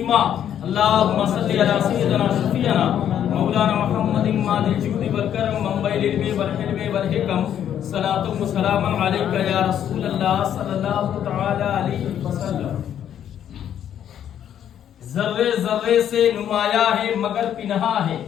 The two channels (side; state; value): right; quieter; 9.9 dB